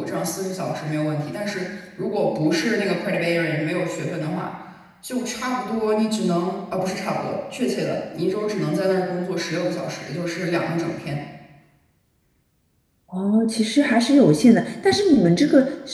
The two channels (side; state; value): both; identical; correlation 1.00